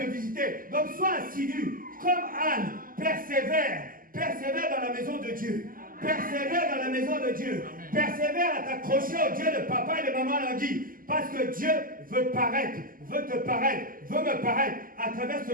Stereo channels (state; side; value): late; left; 0.41 ms